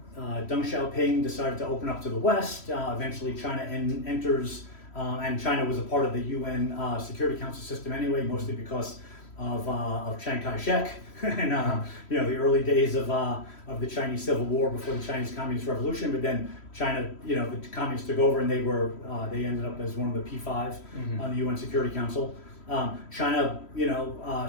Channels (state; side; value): late; right; 3.1 ms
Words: Deng Xiaoping decided to open up to the West. Eventually, China enters, and China was a part of the UN Security Council system anyway, mostly because of Chiang Kai-shek and you know, the early days of the Chinese Civil War before the Chinese Communist Revolution. But then China, you know, the communists took over and they ended up as one of the P5 on the UN Security Council. China, you know,